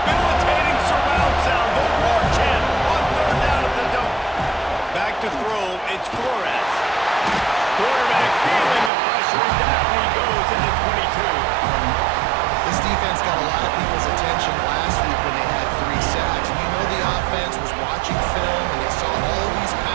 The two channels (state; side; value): drops out; left; at 8.9 s